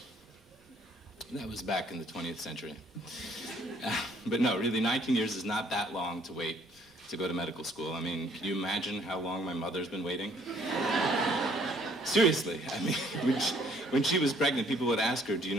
That was back in the 20th century. But no, really, 19 years is not that long to wait to go to medical school. I mean, can you imagine how long my mother's been waiting? Seriously, I mean, when she was pregnant, people would ask her, do you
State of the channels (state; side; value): normal; both; correlation 0.62